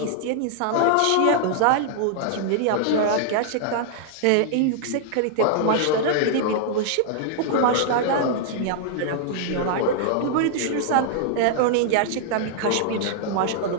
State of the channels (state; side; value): different; both; correlation -0.01